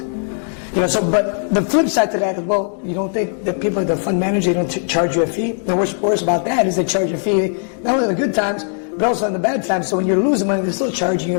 You know, so, but the flip side to that is, well, you don't think that people at the fund manager, they don't charge you a fee? The worst about that is they charge you a fee, not only in the good times, but also in the bad times. So when you're losing money, they're still charging you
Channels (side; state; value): right; silent; 62 dB below the other